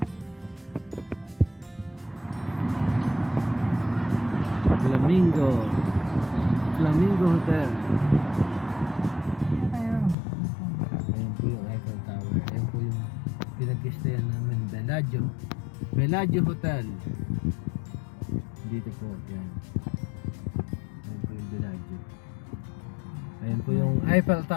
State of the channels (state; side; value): drops out; right; at 10.2 s